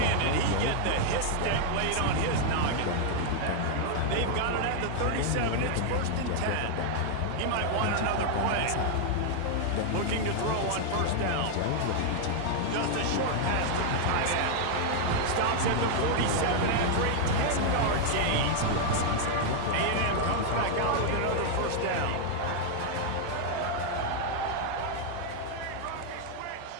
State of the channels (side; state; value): both; different; correlation 0.00